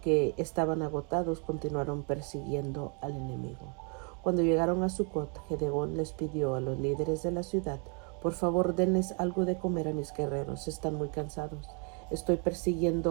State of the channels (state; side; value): quieter; left; 36.9 dB